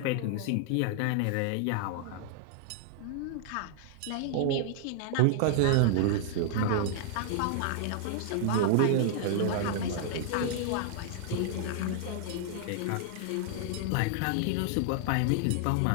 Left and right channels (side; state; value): both; different; correlation -0.01